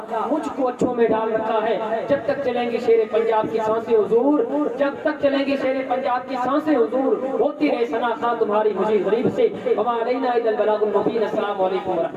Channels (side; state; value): both; identical; correlation 1.00